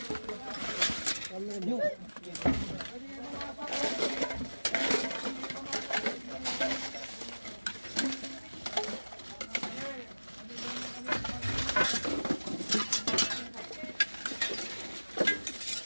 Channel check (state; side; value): inverted; both; correlation -1.00